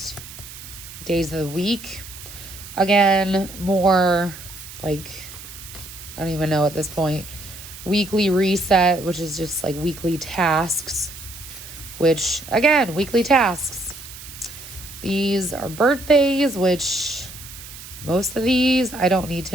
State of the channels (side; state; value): right; noise; hiss, 14 dB below the sound